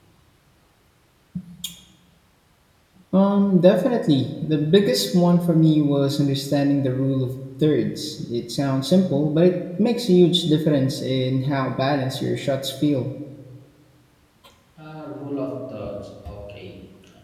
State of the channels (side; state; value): both; identical; correlation 1.00